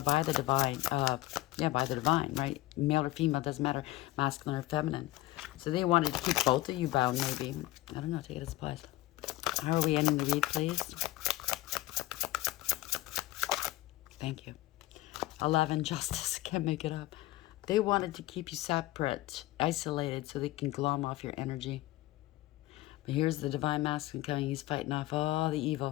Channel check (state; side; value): quieter; right; 17.7 dB